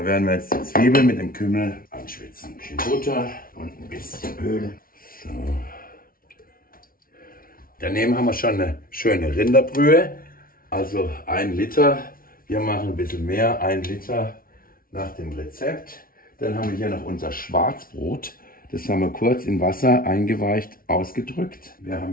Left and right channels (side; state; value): right; late; 0.43 ms